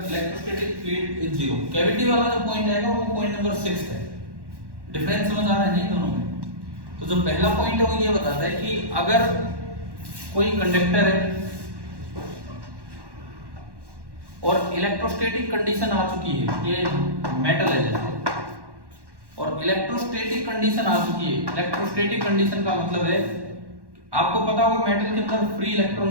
electrostatic field is 0। Cavity वाला जो पॉइंट आएगा वो पॉइंट नंबर 6 है। डिफरेंस समझ आ रहा है नहीं दोनों में? तो जो पहला पॉइंट है वो ये बताता है कि अगर कोई कंडक्टर है और इलेक्ट्रोस्टैटिक कंडीशन आ चुकी है, ये मेटल है जैसे, और इलेक्ट्रोस्टैटिक कंडीशन आ चुकी है। इलेक्ट्रोस्टैटिक कंडीशन का मतलब है, आपको पता होगा मेटल के अंदर फ्री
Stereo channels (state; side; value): late; left; 1.1 ms